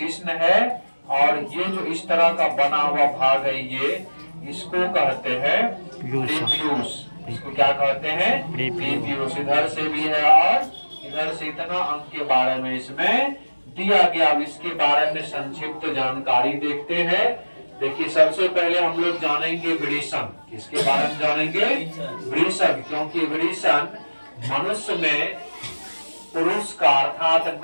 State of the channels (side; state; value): both; inverted; correlation -1.00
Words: है। और ये जो इस तरह का बना हुआ भाग है, ये इसको कहते हैं प्रीपियूस। इसको क्या कहते हैं? प्रीपियूस। इधर से भी है और इधर से इतना अंग के बारे में इसमें दिया गया। अब इसके बारे में संक्षिप्त जानकारी देखते हैं। देखिए, सबसे पहले हम लोग जानेंगे वृषण। किसके बारे में जानेंगे? वृषण। क्योंकि वृषण मनुष्य में पुरुष का अर्थात